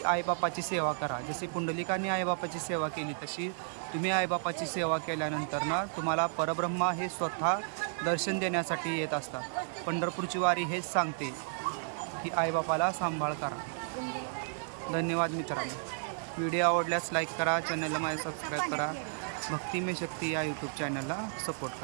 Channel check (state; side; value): silent; left; digital silence